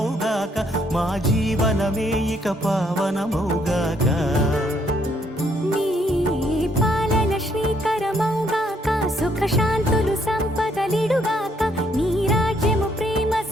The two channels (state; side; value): normal; both; correlation 0.70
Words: మా జీవనమే ఇక పావనమౌగాక. నీ పాలన శ్రీకరమౌగాక. సుఖ శాంతులు సంపదలిడుగాక. నీ రాజ్యము ప్రేమ